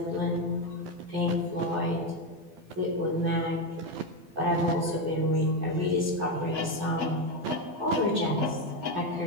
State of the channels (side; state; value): left; late; 12 ms